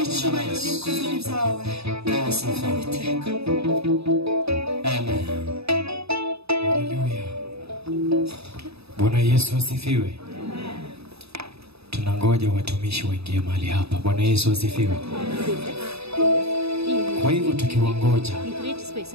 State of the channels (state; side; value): late; left; 0.78 ms